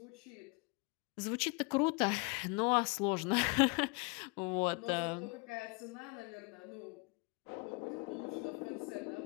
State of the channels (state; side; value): quieter; right; 31.3 dB